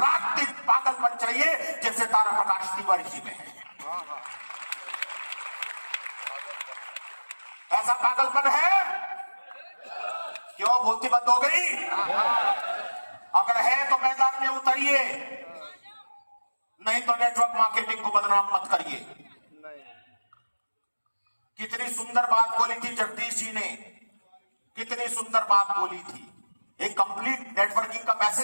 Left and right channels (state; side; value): inverted; both; correlation -1.00